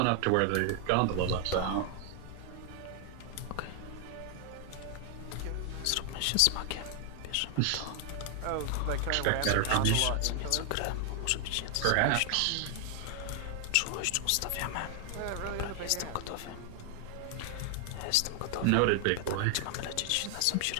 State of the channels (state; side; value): different; both; correlation 0.00